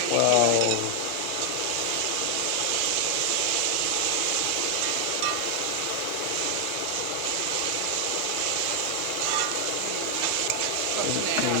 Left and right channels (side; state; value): both; different; correlation 0.00